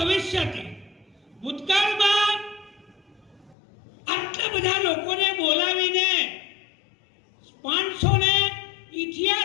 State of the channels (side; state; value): right; drops out; at 3.6 s